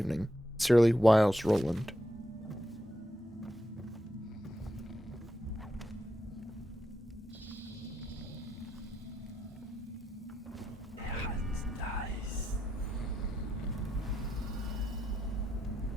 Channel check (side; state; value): both; normal; correlation 0.83